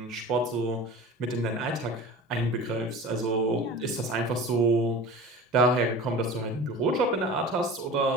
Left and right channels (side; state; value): both; normal; correlation 0.37